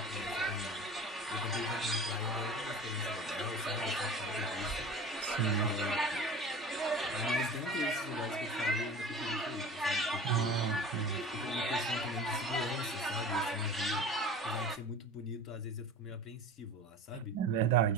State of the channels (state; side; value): normal; both; correlation 0.38